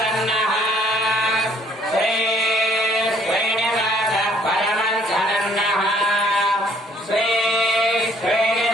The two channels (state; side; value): normal; both; correlation 0.62